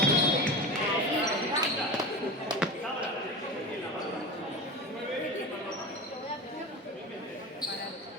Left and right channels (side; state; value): both; normal; correlation 0.28